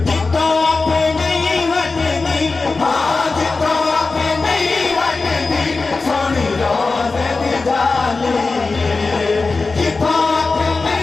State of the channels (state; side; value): quieter; right; 3.9 dB